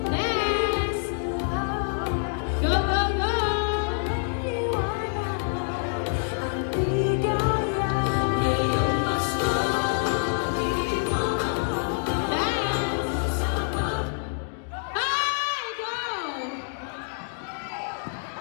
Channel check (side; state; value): right; silent; digital silence